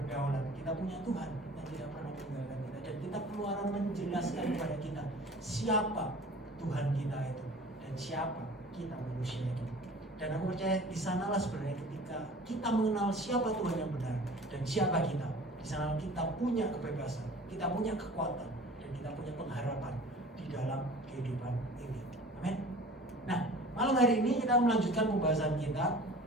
kita punya Tuhan yang tidak pernah meninggalkan kita, dan kita Keluaran menjelaskan kepada kita siapa Tuhan kita itu dan siapa kita manusia itu. Dan aku percaya di sanalah sebenarnya ketika kita mengenal siapa Tuhan yang benar dan siapa kita, di sana kita punya kebebasan, kita punya kekuatan, dan kita punya pengharapan di dalam kehidupan ini. Amin. Nah, malam hari ini kita melanjutkan pembahasan kita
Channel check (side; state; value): both; normal; correlation 0.44